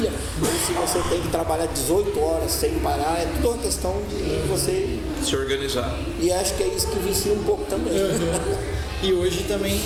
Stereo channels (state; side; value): identical; both; correlation 1.00